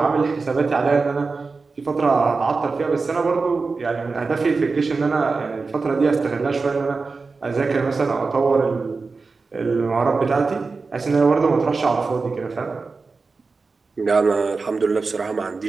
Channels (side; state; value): left; quieter; 4.2 dB